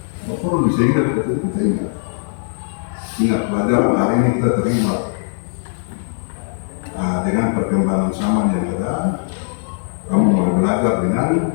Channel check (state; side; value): silent; right; 63 dB below the other